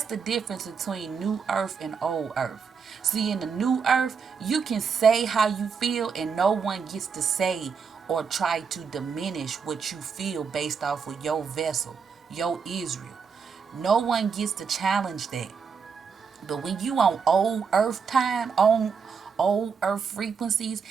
the difference between new earth and old earth. See, in the new earth, you can say how you feel and no one gets to say or try to diminish what you feel based off of your vessel, your Israel. No one gets to challenge that. But when you on old earth time, on old earth frequencies,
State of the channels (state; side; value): quieter; left; 6.0 dB